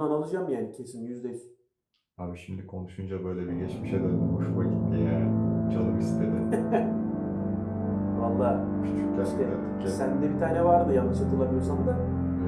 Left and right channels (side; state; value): both; identical; correlation 1.00